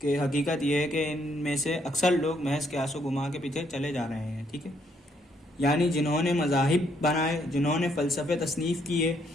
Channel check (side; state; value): both; normal; correlation 0.71